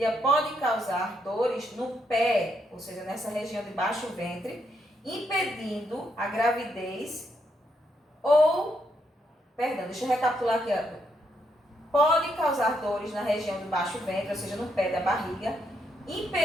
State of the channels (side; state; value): both; normal; correlation 0.77